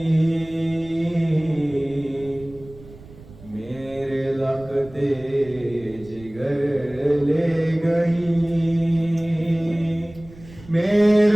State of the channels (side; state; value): right; noise; rumble, 20 dB below the sound